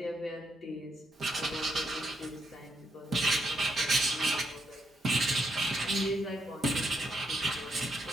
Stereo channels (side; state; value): both; normal; correlation 0.78